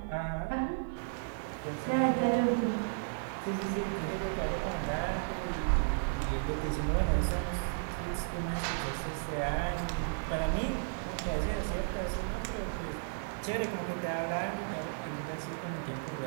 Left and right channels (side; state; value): left; silent; digital silence